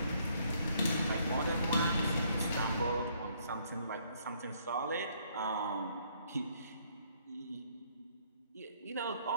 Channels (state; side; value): inverted; both; correlation -0.67